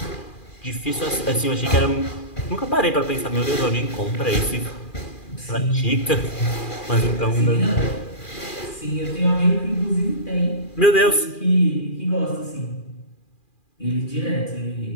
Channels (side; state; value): right; late; 2.4 ms